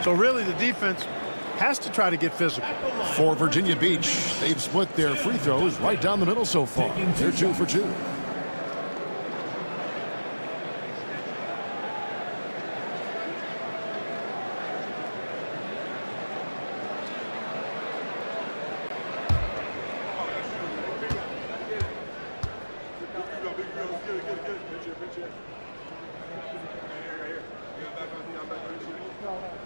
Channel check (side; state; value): both; inverted; correlation -1.00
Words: So really the defense has to try to get physical. For Virginia Beach, they've split their free throws right down the middle so far. They're 2 for 2.